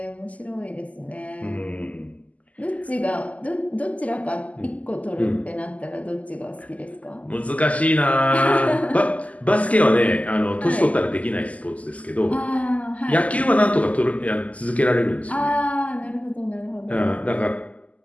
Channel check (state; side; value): late; right; 0.071 ms